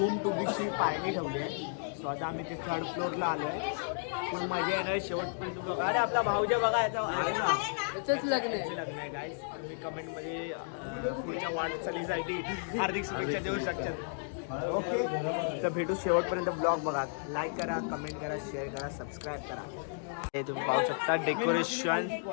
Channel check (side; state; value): right; silent; digital silence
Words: टू बीची पार्टी ठेवली आहे. सो आता आम्ही ते थर्ड फ्लोअरला आलो आहे. खूप मजा येणार शेवटपर्यंत बघा. अरे आपला भाऊजा बघा याचं लग्न आहे. लग्न आहे गाईस. तुम्ही कमेंटमध्ये पुढच्या वाटचालीसाठी हार्दिक शुभेच्छा देऊ शकतात. ओके, तर भेटू शेवटपर्यंत ब्लॉग बघा. लाईक करा, कमेंट करा, शेअर करा, सबस्क्राईब करा. हे तुम्ही पाहू शकता डेकोरेशन.